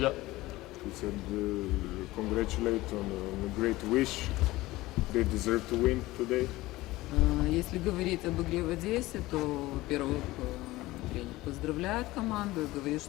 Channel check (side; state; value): right; quieter; 18.5 dB